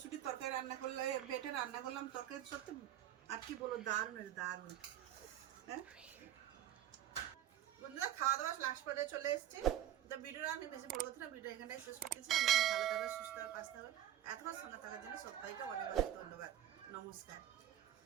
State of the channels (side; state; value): left; quieter; 12.0 dB